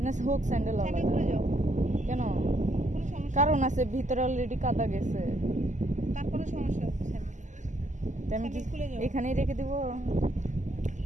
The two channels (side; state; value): left; late; 0.35 ms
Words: হোক স্যান্ডেল কেন? কারণ আছে, ভিতরে অলরেডি কাদা গেছে। তারপরে সমস্যা আমি এখানেই রেখে দিব।